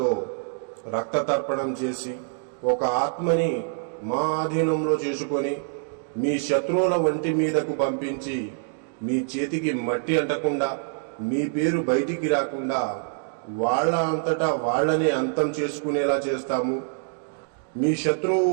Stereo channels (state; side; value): silent; left; digital silence